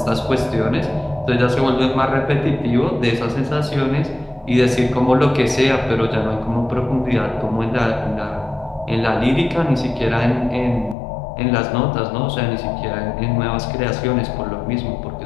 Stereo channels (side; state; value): right; drops out; at 11.0 s